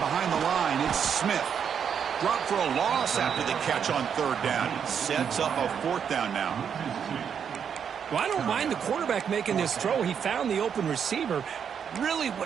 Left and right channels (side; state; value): left; quieter; 7.6 dB